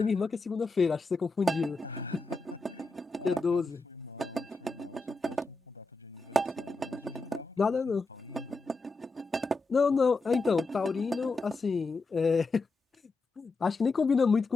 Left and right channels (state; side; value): quieter; right; 3.4 dB